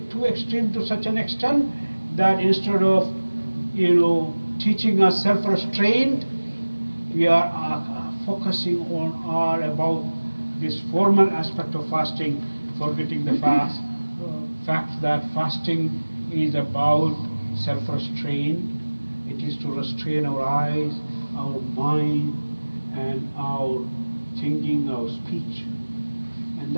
too extreme to such an extent that instead of teaching us self-restraint, we are focusing on all about this formal aspect of fasting, forgetting the fact that fasting is about self-restraint. It is to restrain our eyes, our mind, and our thinking, our speech. And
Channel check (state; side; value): inverted; both; correlation -1.00